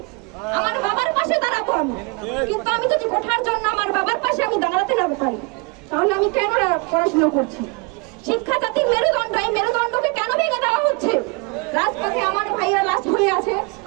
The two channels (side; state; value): left; quieter; 30.2 dB